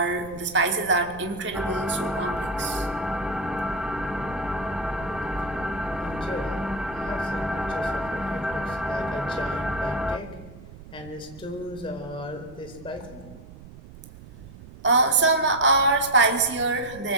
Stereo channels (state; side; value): noise; right; rumble, 17 dB below the sound